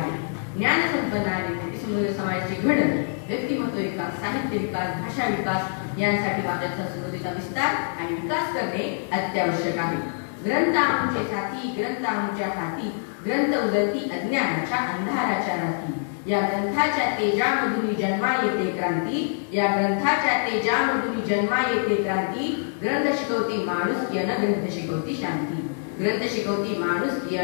ज्ञान संपन्न आणि समृद्ध समाजाची घडण, व्यक्तिमत्व विकास, साहित्य विकास, भाषा विकास यांसाठी वाचन संस्कृतीचा विस्तार आणि विकास करणे अत्यावश्यक आहे. ग्रंथ आमचे साथी, ग्रंथ आमच्या हाती, ग्रंथ उगलती अज्ञानाच्या अंधाराच्या राती. या ग्रंथाच्या तेजामधून जन्मा येते क्रांती, या ग्रंथाच्या तेजामधून जन्मा येते क्रांती. ग्रंथ शिकवती माणूस की अन ग्रंथ शिकवती शांती. ग्रंथ शिकवती माणूस की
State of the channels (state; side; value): silent; right; digital silence